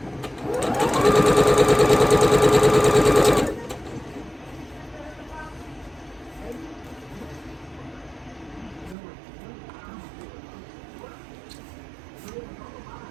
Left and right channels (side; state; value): left; drops out; at 9.0 s